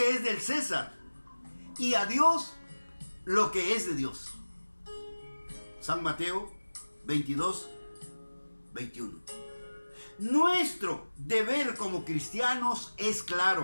es del César, y a Dios lo que es de Dios. San Mateo 22, 21. Nuestro deber como cristianos es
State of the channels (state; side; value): inverted; both; correlation -1.00